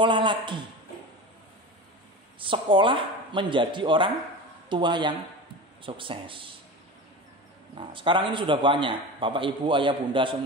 lagi. Sekolah menjadi orang tua yang sukses. Nah, sekarang ini sudah banyak. Bapak, Ibu, Ayah, Bunda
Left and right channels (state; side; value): normal; both; correlation 0.30